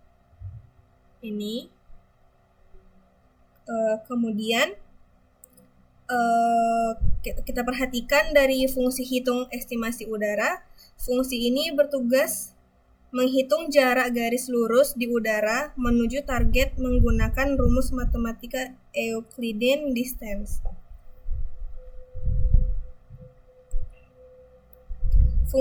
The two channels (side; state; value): both; identical; correlation 1.00